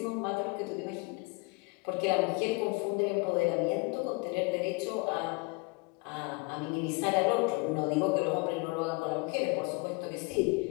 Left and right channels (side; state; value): right; quieter; 28.8 dB